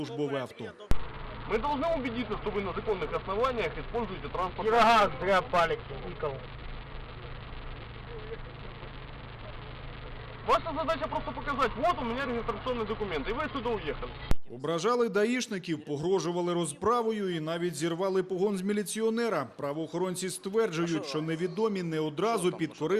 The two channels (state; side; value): identical; both; correlation 1.00